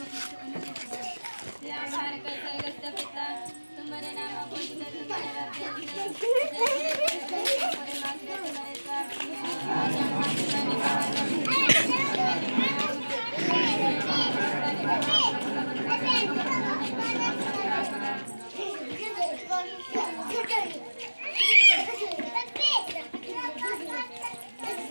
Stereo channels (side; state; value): both; inverted; correlation -1.00